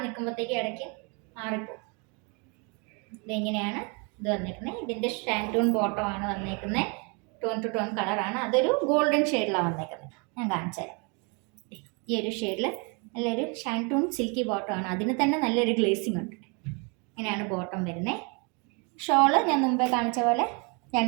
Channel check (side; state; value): left; quieter; 33.4 dB